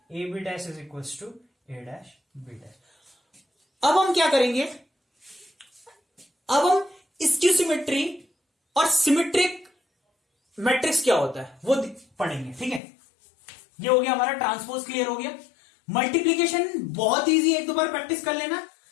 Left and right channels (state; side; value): drops out; right; at 12.8 s